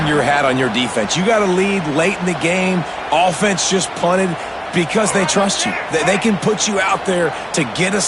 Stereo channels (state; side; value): identical; both; correlation 1.00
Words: your hat on your defense. You got to lead late in the game. Offense just punted because they trust you. They can put you out there to get a